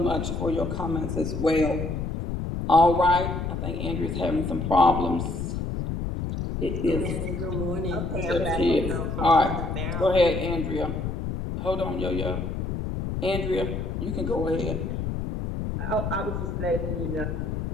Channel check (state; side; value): noise; left; rumble, 3 dB below the sound